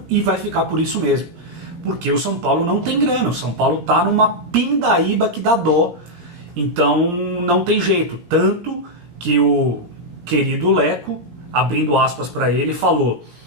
e vai ficar por isso mesmo. Porque o São Paulo não tem grana, o São Paulo está numa pindaíba que dá dó, então não tem jeito. Tanto que o querido Leco, abrindo aspas para ele, falou:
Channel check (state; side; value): late; left; 18 ms